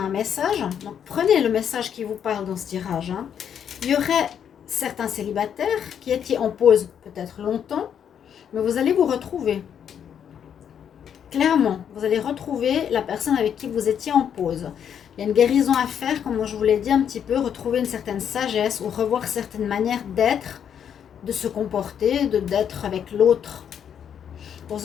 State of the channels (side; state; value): right; quieter; 8.5 dB